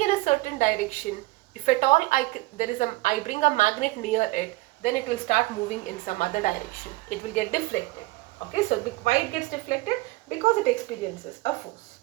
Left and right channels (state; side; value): quieter; left; 21.1 dB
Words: in a certain direction. If at all I bring a magnet near it, then it will start moving in some other direction. It will get deflected. Okay, so why it gets deflected? Because it experiences a force.